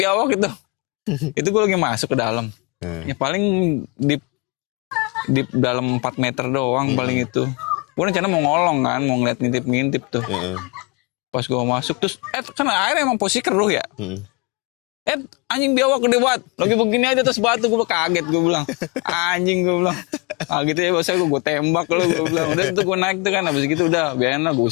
itu. Itu gua lagi masuk ke dalam. Ya paling di dalam 4 meter doang paling itu. Gue rencana mau ngolong kan, mau ngeliat ngintip-ngintip tuh. Pas gue masuk terus, kan air emang posisi keruh ya. Anjing biawak gede banget. Lagi begini aja terus batu, gue kaget gue bilang. Anjing gue bilang. Gitu ya bahasa gue tembak lo gue bilang. Udah itu gue naik tuh kan, habis gitu udah biarin lah gue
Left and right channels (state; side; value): quieter; right; 30.1 dB